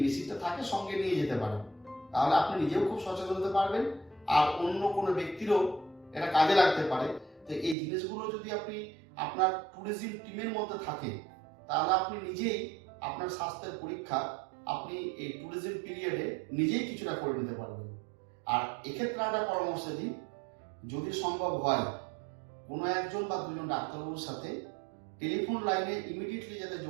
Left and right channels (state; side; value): drops out; left; at 7.8 s